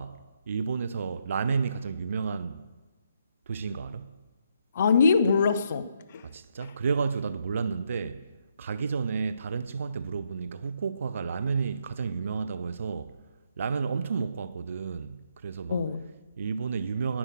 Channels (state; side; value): inverted; both; correlation -0.76